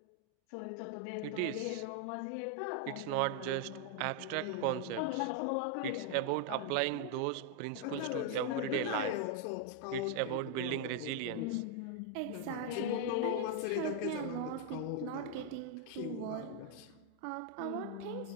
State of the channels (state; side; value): different; both; correlation 0.00